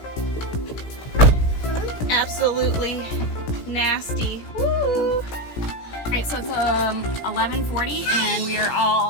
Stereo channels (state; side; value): late; right; 17 ms